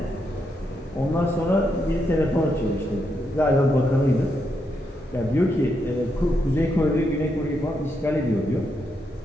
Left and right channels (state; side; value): normal; both; correlation 0.81